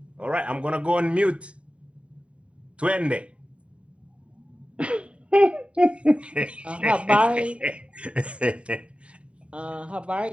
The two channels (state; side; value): late; left; 0.061 ms